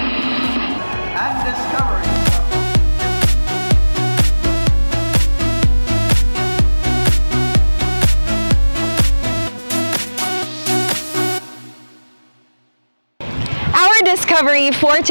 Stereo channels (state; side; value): inverted; both; correlation -1.00